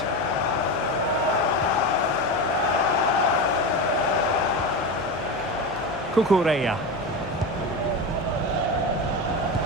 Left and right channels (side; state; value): left; noise; hum, 18 dB below the sound